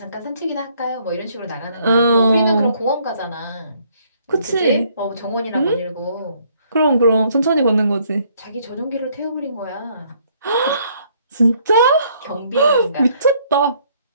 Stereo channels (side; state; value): both; inverted; correlation -0.66